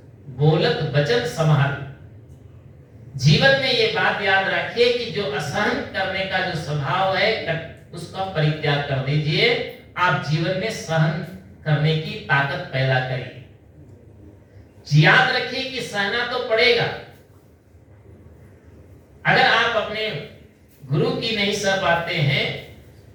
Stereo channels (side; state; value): both; identical; correlation 1.00